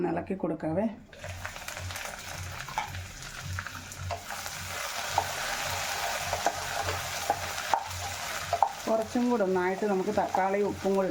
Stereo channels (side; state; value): both; identical; correlation 1.00